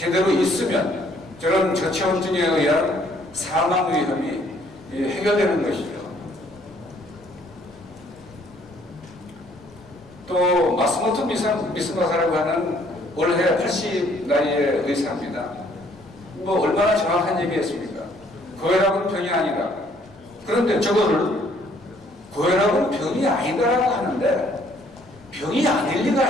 있으면 저런 저체온증에 의한 사망 위험이 해결되는 것이죠. 또 마스모토 미스마사라고 하는 올해 80 나이의 의사입니다. 뭐 얼마나 정확한 얘기했습니까? 고혈압은 병이 아니다. 그런데 저거를 고혈압은 병이 아니다라고 하는데 병이 아닐 리가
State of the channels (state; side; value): normal; both; correlation 0.63